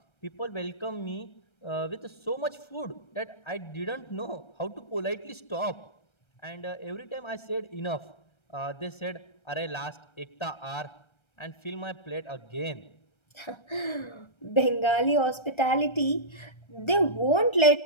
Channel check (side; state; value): right; late; 1.3 ms